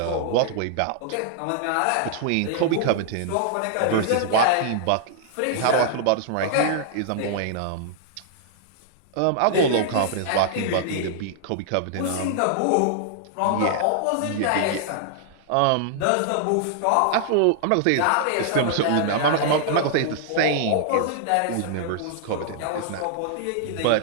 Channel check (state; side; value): different; both; correlation -0.01